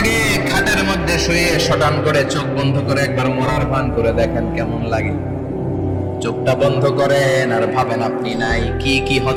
খাটের মধ্যে শুয়ে শটান করে চোখ বন্ধ করে একবার মরার ভান করে দেখেন কেমন লাগে। চোখটা বন্ধ করেন আর ভাবেন আপনি নাই, কি কি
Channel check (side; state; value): both; identical; correlation 1.00